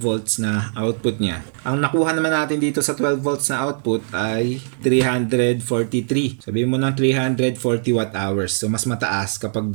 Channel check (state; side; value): silent; left; digital silence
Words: na output niya. Ang nakuha naman natin dito sa 12 volts na output ay 343. Sabihin mo ng 340 watt hours. So, mas mataas kapag